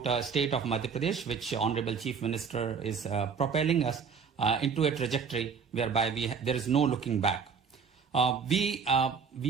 state of Madhya Pradesh, which Honorable Chief Minister is propelling us into a trajectory whereby there is no looking back. We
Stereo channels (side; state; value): left; quieter; 6.0 dB